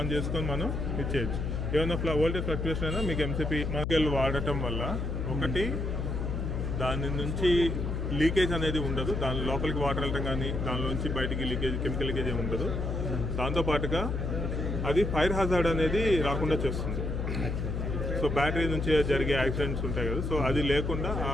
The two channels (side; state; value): left; noise; hum, 2 dB below the sound